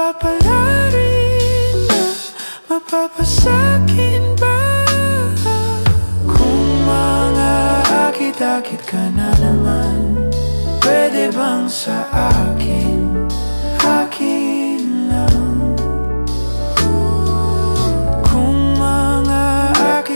na mapapasakin ba? Kung mga akit-akit ka na naman, pwede bang sa akin, akin lang? Kung mga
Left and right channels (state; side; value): inverted; both; correlation -1.00